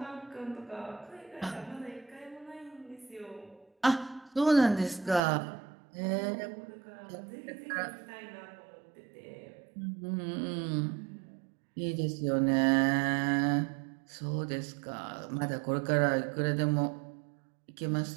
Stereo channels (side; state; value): left; drops out; at 5.2 s